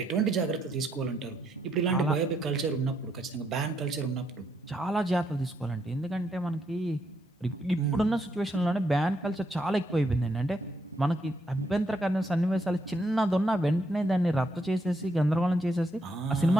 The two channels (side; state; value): both; normal; correlation 0.76